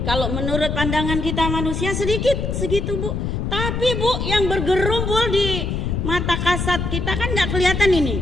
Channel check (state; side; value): noise; left; rumble, 2 dB below the sound